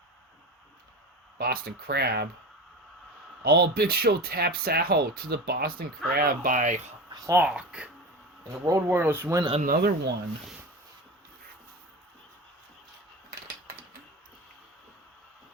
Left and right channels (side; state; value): both; normal; correlation 0.28